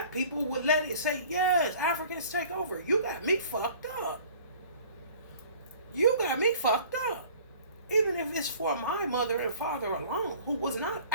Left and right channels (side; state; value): both; inverted; correlation -0.49